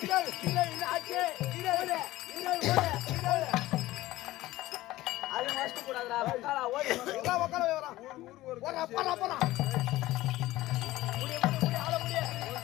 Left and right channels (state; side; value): quieter; right; 16.9 dB